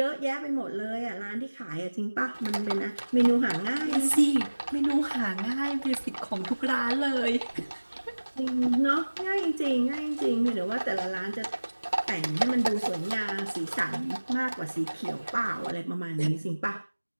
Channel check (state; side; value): inverted; both; correlation -1.00